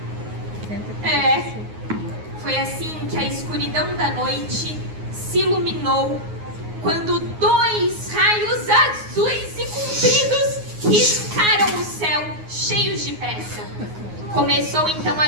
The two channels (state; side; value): late; left; 9.5 ms